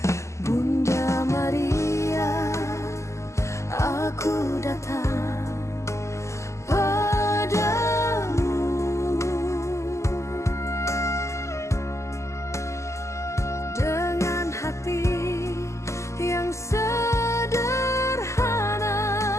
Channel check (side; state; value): right; late; 0.14 ms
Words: Bunda Maria, aku datang padamu dengan hati yang sederhana.